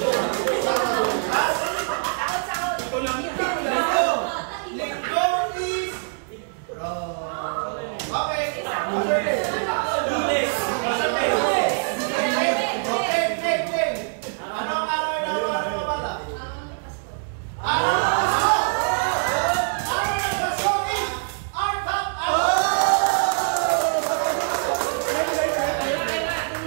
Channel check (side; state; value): left; silent; 63 dB below the other